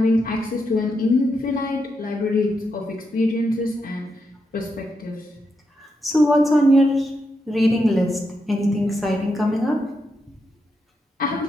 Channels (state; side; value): normal; both; correlation 0.83